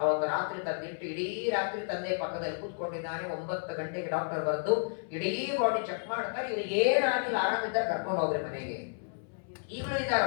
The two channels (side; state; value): right; silent; 57 dB below the other